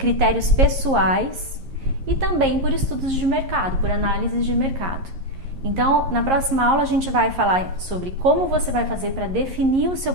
pessoais e também por estudos de mercado, por análises de mercado. Então, na próxima aula a gente vai falar sobre como você vai fazer para definir o seu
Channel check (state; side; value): late; left; 11 ms